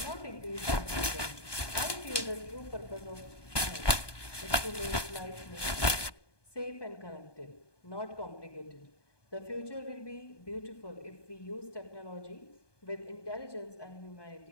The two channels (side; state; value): right; late; 1.2 ms